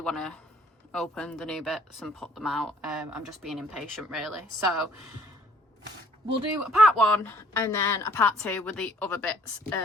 to open the new bits and put them out. I'm just being impatient really, so we'll do a part one and then a part two with the other bits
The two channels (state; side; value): normal; both; correlation 0.60